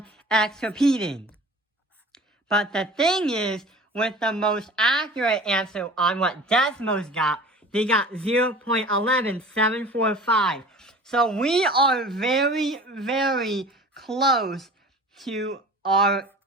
repeating. But the thing is, with the most accurate answer on what Desmos got, they got 0.11745. So we are very, very close to our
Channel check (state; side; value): normal; both; correlation 0.41